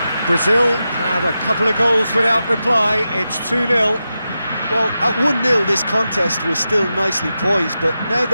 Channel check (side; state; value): both; inverted; correlation -0.90